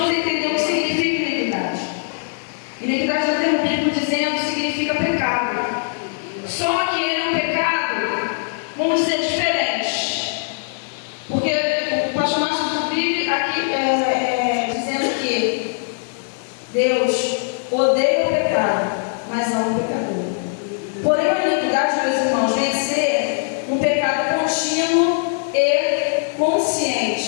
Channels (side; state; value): right; silent; digital silence